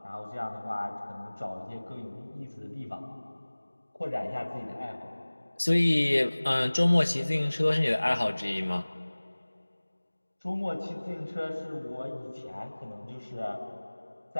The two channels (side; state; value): both; inverted; correlation -1.00